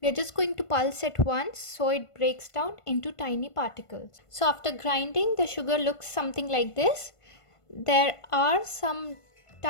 We are just going to pulse it once so it breaks down into tiny particles. So after grinding, the sugar looks something like this. There are some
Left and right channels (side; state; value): right; late; 1.5 ms